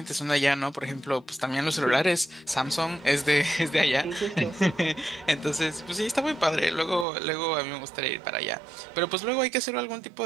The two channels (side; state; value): left; drops out; at 7.1 s